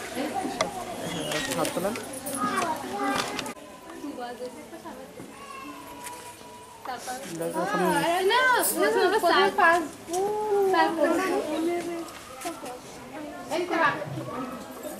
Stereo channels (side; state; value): both; identical; correlation 1.00